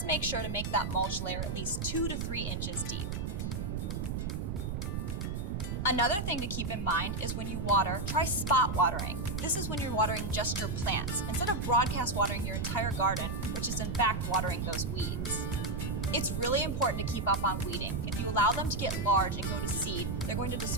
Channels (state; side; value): noise; right; rumble, 2 dB below the sound